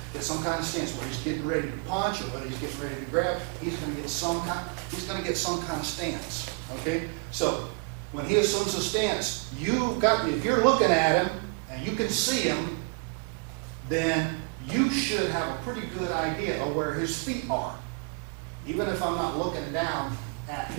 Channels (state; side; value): quieter; left; 35.1 dB